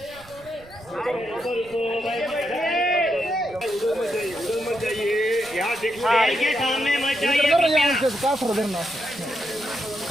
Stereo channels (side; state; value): right; noise; rumble, 24 dB below the sound